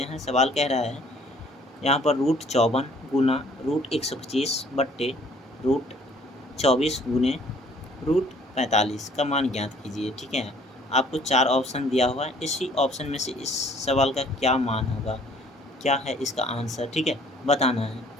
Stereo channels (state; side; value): normal; both; correlation 0.57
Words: हैं। सवाल कह रहा है यहाँ पर √54 गुना √125 बट्टे √24 गुने √45 का मान ज्ञात कीजिए, ठीक है। आपको 4 ऑप्शन दिया हुआ है। इसी ऑप्शन में से इस सवाल का क्या मान होगा, क्या है इसका आंसर, ठीक है, बताना है,